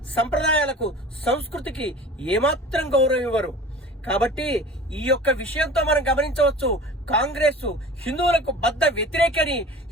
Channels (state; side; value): normal; both; correlation 0.40